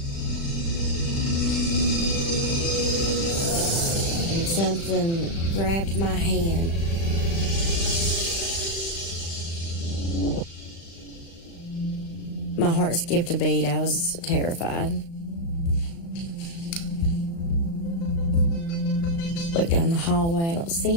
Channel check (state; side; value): late; right; 36 ms